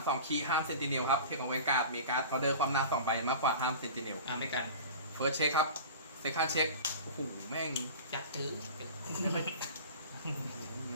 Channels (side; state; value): both; inverted; correlation -0.36